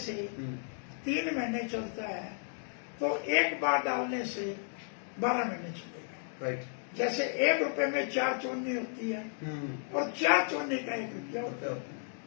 3 महीने चलता है तो 1 बार डालने से 12 महीने चलेगा। राइट। जैसे 1 रुपए में 4 चौनी होती है और 4 चौनी का 1 रुपया होता है।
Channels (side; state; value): right; silent; 55 dB below the other